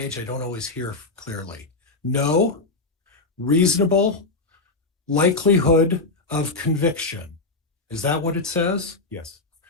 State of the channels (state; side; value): quieter; right; 3.6 dB